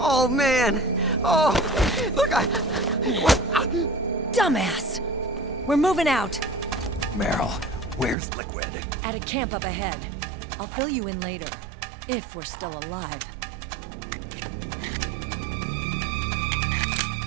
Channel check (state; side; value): drops out; left; at 8.2 s